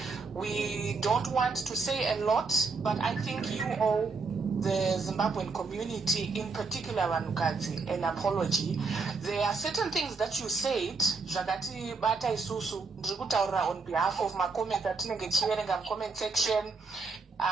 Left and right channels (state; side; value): quieter; left; 4.3 dB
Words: We don't want to say a lot, but I think you owe the Zimbabwean community, in particular vanhukadzi, an apology. There are certain things that you said, zvakati bata isusu, ndiri kutaura on behalf of my comments atinenge tichiverenga mcomment section,